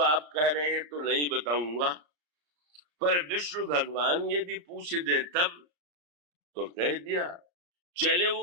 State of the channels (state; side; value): late; left; 34 ms